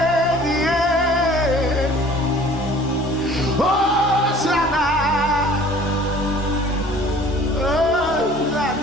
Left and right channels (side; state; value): both; normal; correlation 0.50